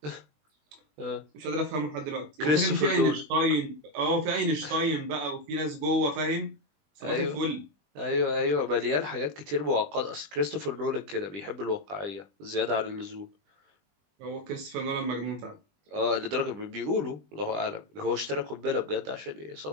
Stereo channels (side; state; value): left; late; 20 ms